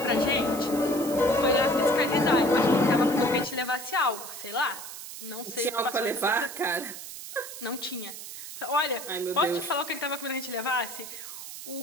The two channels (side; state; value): right; noise; hiss, 11 dB below the sound